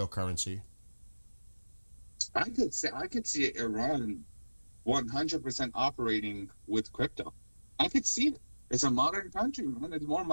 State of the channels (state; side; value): inverted; both; correlation -1.00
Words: I could see Iran 100% operating with crypto. I could see it. It's a modern country, man. It's more